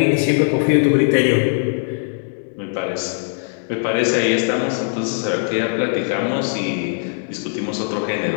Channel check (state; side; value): silent; right; 66 dB below the other